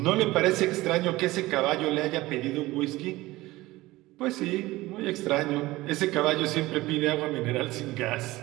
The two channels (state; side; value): quieter; left; 18.8 dB